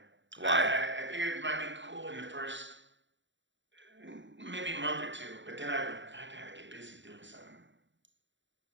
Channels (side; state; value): left; late; 0.54 ms